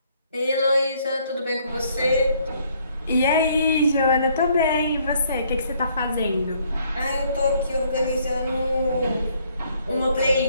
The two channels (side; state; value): both; inverted; correlation -0.66